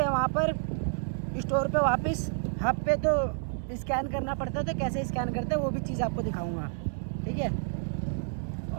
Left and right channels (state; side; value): silent; left; digital silence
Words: हैं वहाँ पर स्टोर पे वापस हब पे, तो स्कैन करना पड़ता है। तो कैसे स्कैन करते हैं वो भी चीज़ आपको दिखाऊंगा, ठीक है।